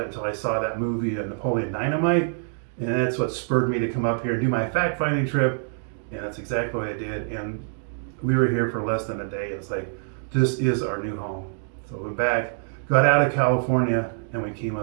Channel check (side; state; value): left; silent; digital silence